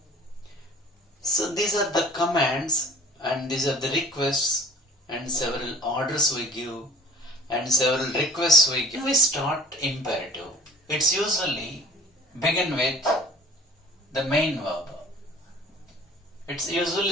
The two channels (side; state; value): both; normal; correlation 0.46